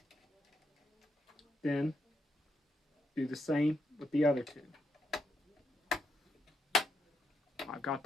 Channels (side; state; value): both; normal; correlation 0.80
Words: Then do the same with the other 2. I've got